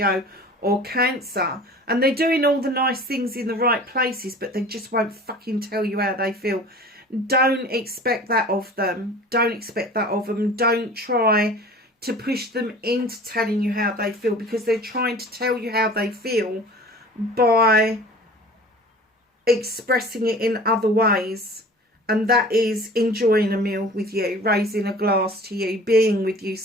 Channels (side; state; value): both; normal; correlation 0.43